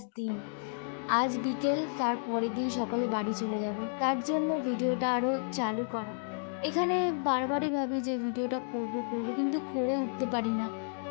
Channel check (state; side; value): silent; right; digital silence